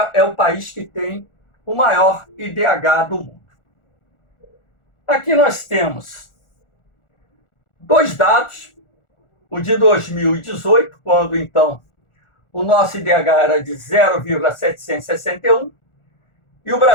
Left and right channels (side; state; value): right; late; 1.4 ms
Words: é o país que tem o maior IDH do mundo. Aqui nós temos 2 dados, o de 2018, quando então o nosso IDH era de 0,761, e o